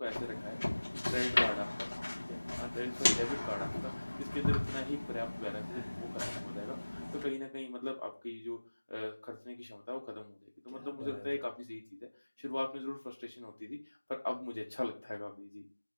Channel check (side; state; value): both; inverted; correlation -1.00